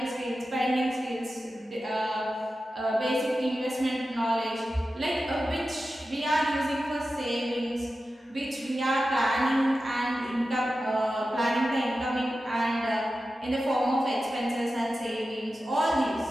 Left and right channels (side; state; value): both; normal; correlation 0.93